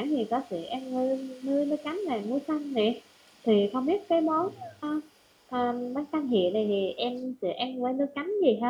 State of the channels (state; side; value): identical; both; correlation 1.00